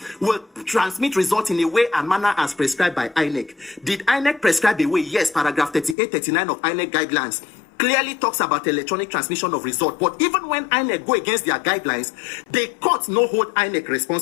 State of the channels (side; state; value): right; drops out; at 6.0 s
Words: will transmit results in a way and manner as prescribed by INEC. Did INEC prescribe a way? Yes, paragraph 38, 39 of INEC guidelines clearly talks about electronic transmission of result. But even when INEC go against their guidelines, the courts no hold INEC